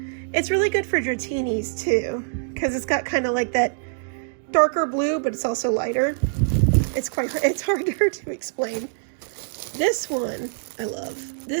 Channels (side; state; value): left; silent; digital silence